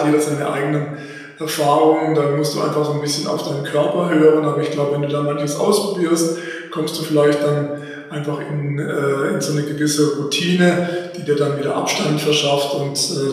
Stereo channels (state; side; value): identical; both; correlation 1.00